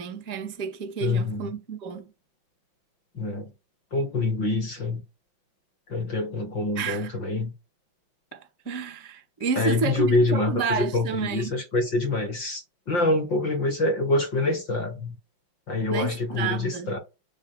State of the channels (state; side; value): late; right; 5.7 ms